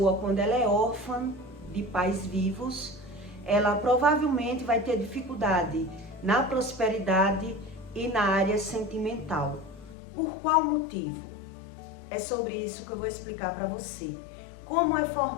quando ela é órfã de pais vivos, ela provavelmente vai ter dificuldade na prosperidade e na área sentimental? Por qual motivo? É sobre isso que eu vou explicar para você. Como é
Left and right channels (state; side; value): drops out; right; at 10.0 s